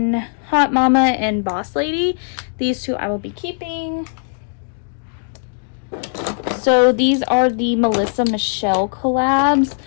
Hot Mama and Boss Lady. These two I will be keeping. So these are the Melissa Michelle collabs.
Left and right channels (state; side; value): silent; right; digital silence